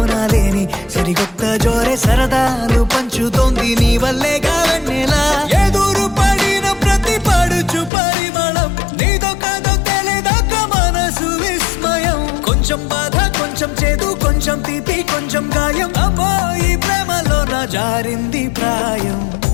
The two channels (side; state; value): right; drops out; at 7.9 s